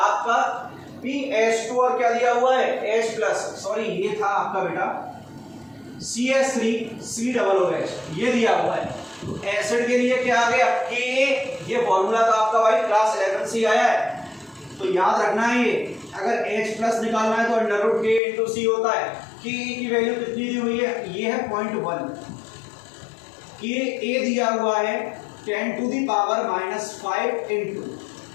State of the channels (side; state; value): right; drops out; at 18.2 s